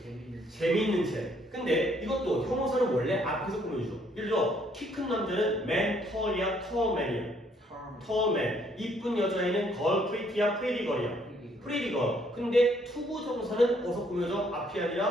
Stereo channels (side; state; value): both; normal; correlation 0.67